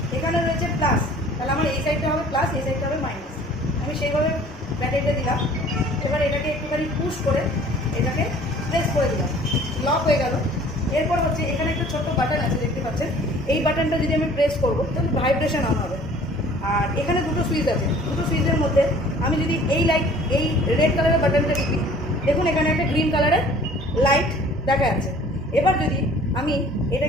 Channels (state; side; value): normal; both; correlation 0.51